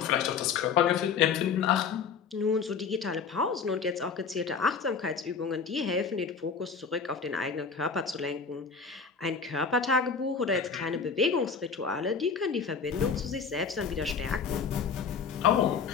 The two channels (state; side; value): quieter; right; 5.8 dB